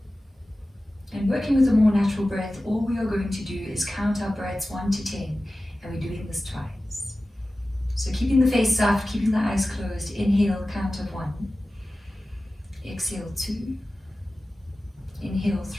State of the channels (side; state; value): both; normal; correlation 0.96